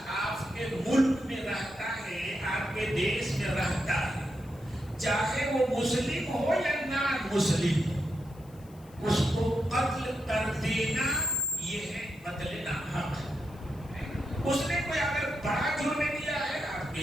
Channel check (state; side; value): noise; left; hiss, 27 dB below the sound